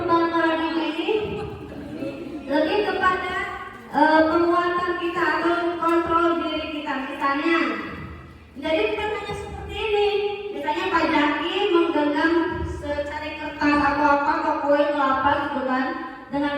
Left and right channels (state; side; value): identical; both; correlation 1.00